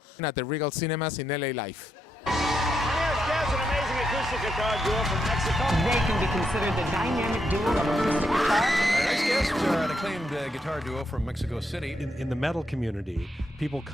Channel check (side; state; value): both; normal; correlation 0.80